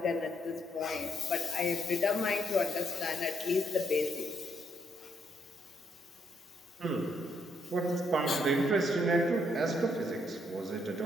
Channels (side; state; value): both; normal; correlation 0.75